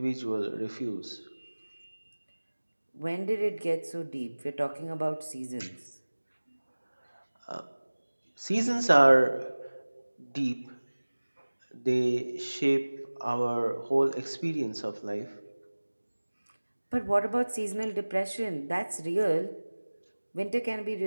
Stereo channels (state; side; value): inverted; both; correlation -1.00